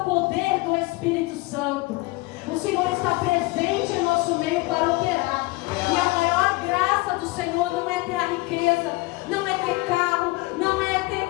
do Espírito Santo. O Senhor está presente em nosso meio para operar. E a maior graça do Senhor não é ter a riqueza, não é ter carro, não é ter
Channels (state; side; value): quieter; right; 23.1 dB